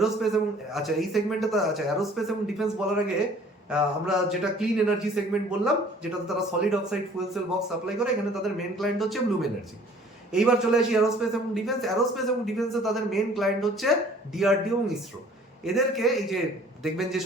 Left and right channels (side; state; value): both; normal; correlation 0.53